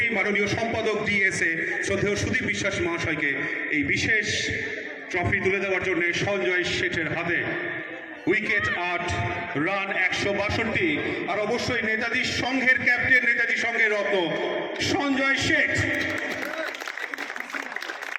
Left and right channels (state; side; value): identical; both; correlation 1.00